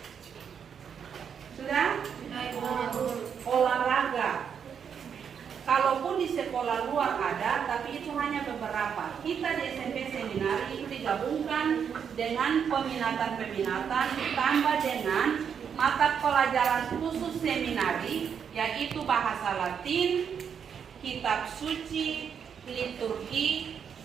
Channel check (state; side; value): quieter; left; 7.4 dB